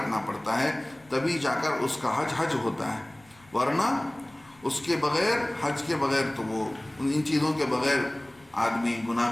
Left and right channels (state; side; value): noise; left; rumble, 29 dB below the sound